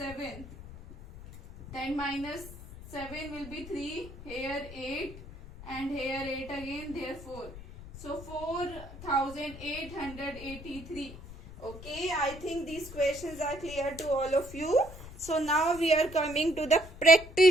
Then minus 7 will be 3. Here 8 and here 8 again. Therefore, so 4883. Okay, I think these questions are clear to all of you. So now we are coming to the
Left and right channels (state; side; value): noise; left; rumble, 15 dB below the sound